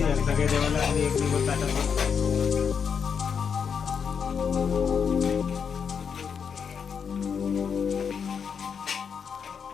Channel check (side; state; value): right; quieter; 6.7 dB